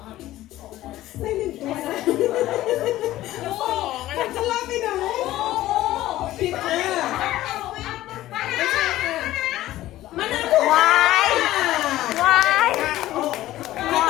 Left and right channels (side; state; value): right; quieter; 15.1 dB